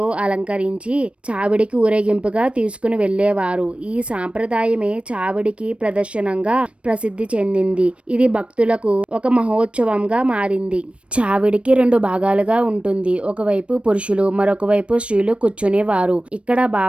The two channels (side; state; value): left; late; 0.060 ms